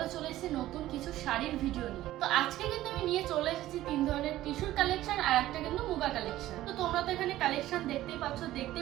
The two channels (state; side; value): quieter; left; 14.8 dB